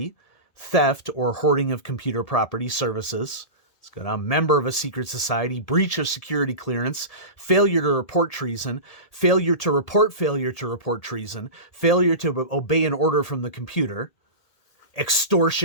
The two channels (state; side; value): late; right; 1.8 ms